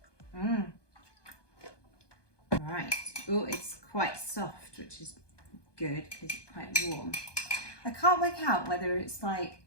Mm. Right. Oh, it's quite soft, which is good because it's quite warm. I can't work out whether it's like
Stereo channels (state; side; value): late; right; 1.2 ms